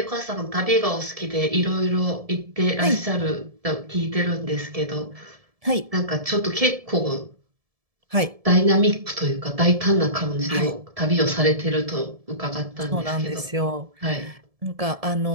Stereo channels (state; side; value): late; left; 1.7 ms